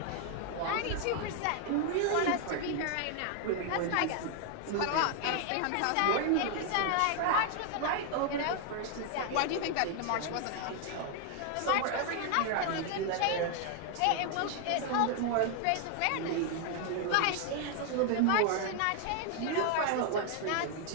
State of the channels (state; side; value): different; both; correlation 0.00